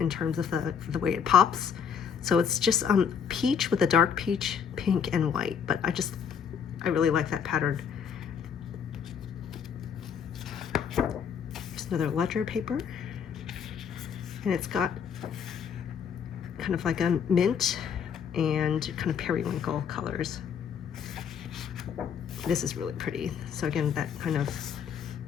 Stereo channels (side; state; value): right; quieter; 7.3 dB